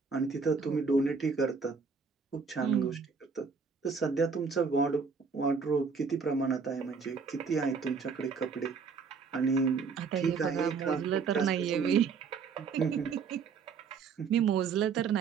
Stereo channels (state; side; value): quieter; left; 5.4 dB